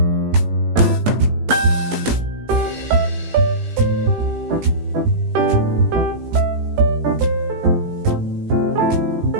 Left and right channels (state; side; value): late; left; 18 ms